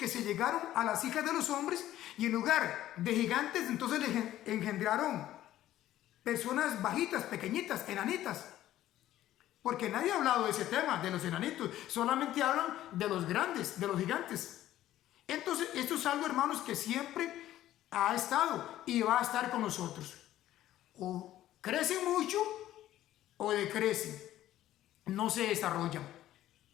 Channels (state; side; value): quieter; right; 13.5 dB